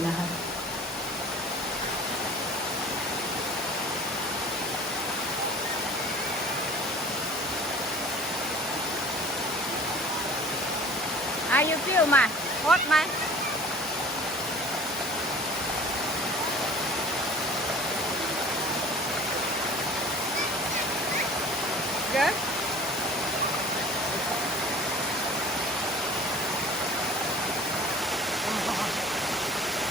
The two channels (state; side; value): normal; both; correlation 0.44